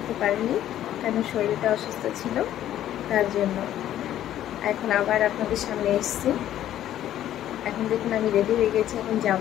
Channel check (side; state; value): right; quieter; 12.0 dB